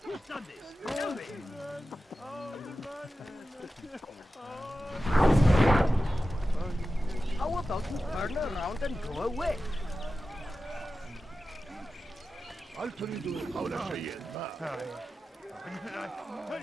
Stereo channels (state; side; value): normal; both; correlation 0.93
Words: Who's done this? Tell me. How about you turn around and go away? هل تريد قول شيء ما؟